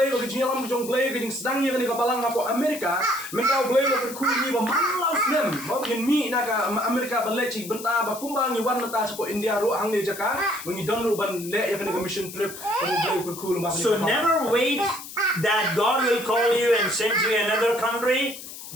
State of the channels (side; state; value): left; noise; hiss, 12 dB below the sound